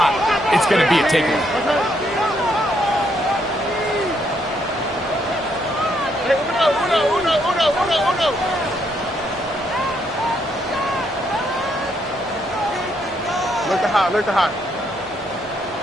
it's going to be a takeaway. Look to high.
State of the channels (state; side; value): normal; both; correlation 0.74